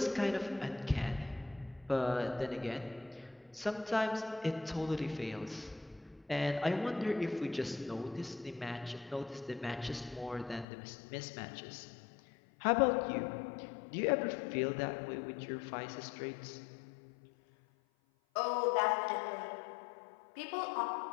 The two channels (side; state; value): right; drops out; at 10.7 s